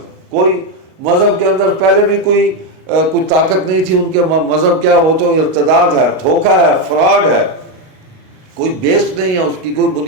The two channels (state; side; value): late; left; 38 ms